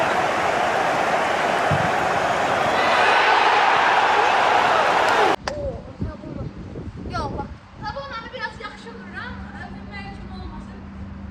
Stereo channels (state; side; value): identical; both; correlation 1.00